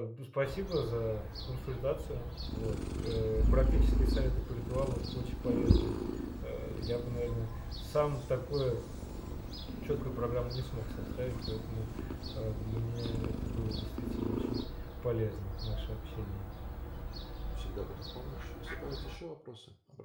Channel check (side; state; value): both; identical; correlation 1.00